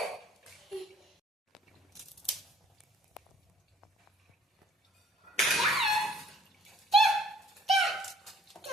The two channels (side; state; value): both; normal; correlation 0.58